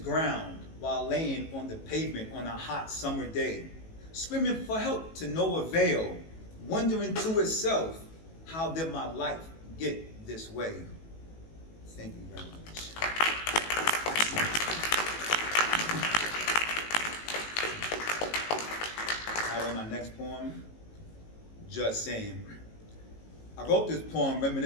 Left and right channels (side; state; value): right; late; 18 ms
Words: while laying on the pavement on a hot summer day, screaming for help to no avail, wondering to itself, how did my life get this way? Thank you very much. All right, on my next poem, Just Saying. I wrote this poem